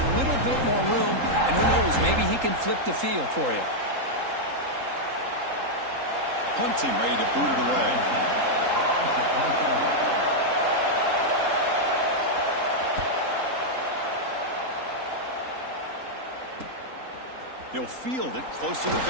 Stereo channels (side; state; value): left; late; 3.8 ms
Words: little bit more room. And who knows, maybe he can flip the field for you. Punt team ready to boot it away. He'll field it close to the